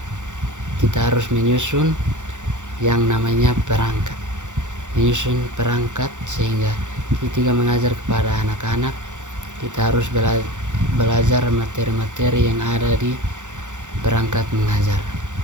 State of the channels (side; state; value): left; late; 0.85 ms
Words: kita harus menyusun yang namanya perangkat, sehingga ketika mengajar kepada anak-anak kita harus belajar materi-materi yang ada di perangkat mengajar.